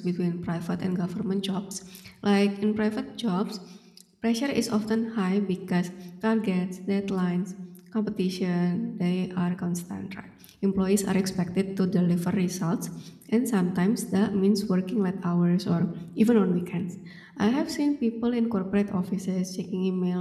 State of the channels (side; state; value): both; identical; correlation 1.00